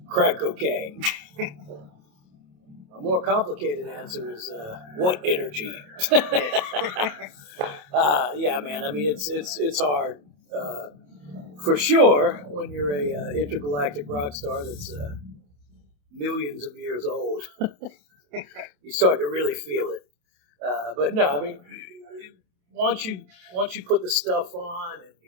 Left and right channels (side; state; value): left; late; 28 ms